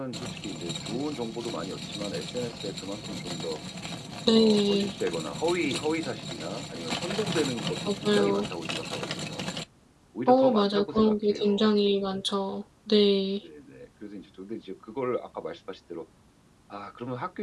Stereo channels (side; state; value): both; identical; correlation 1.00